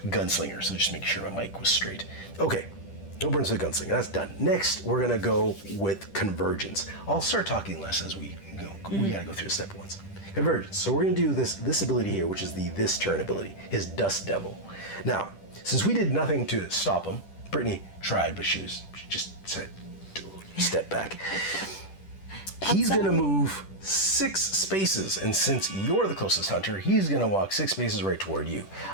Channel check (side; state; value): right; late; 10 ms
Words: So just make sure my mic was straight. Okay, no burns for the gunslinger. That's done. Next, we're gonna go with convergence. I'll start talking less as we go. We gotta go through the step ones. Convergence. So we're gonna do this ability here, which is this turn ability, his Dust Devil. Now, since we did nothing to stop him, Brittany tried, but she just said, step back. He's gonna move 6 spaces, and since you're the closest hunter, he's gonna walk 6 spaces right toward you.